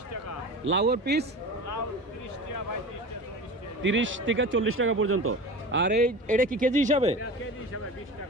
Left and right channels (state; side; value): normal; both; correlation 0.32